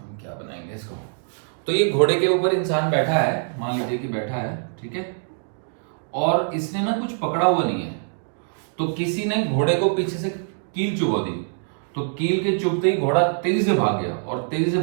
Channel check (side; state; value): left; silent; digital silence